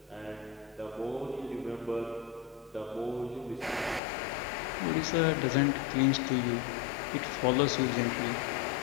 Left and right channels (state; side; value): drops out; right; at 4.0 s